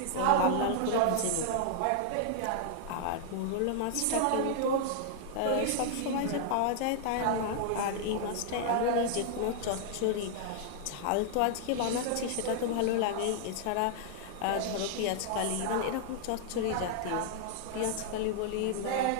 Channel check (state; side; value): different; both; correlation -0.01